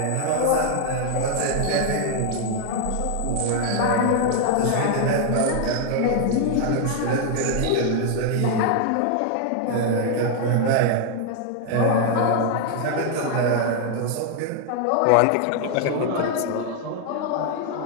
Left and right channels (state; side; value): different; both; correlation 0.00